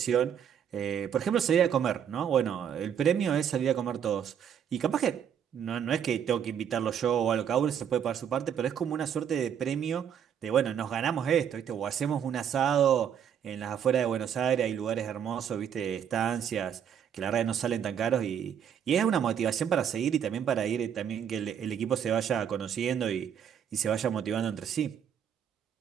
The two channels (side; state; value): left; quieter; 8.6 dB